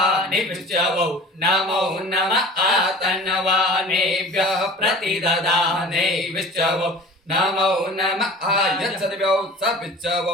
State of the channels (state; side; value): normal; both; correlation 0.42